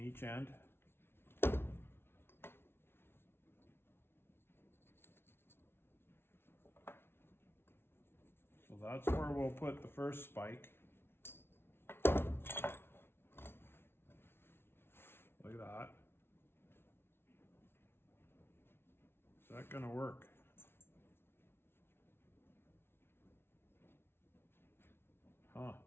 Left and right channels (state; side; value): late; right; 0.12 ms